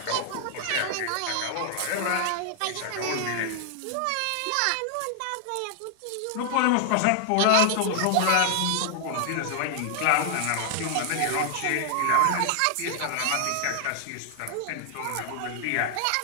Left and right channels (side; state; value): both; different; correlation 0.00